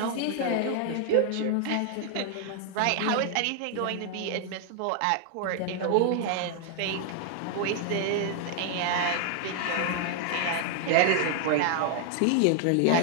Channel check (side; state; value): both; different; correlation 0.00